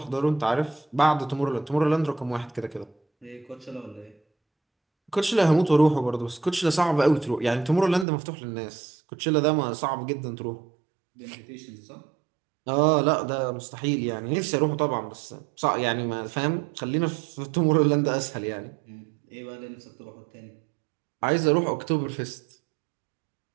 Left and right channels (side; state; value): left; drops out; at 8.1 s